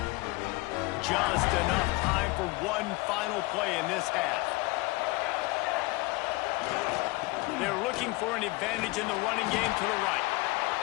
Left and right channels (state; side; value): quieter; right; 22.9 dB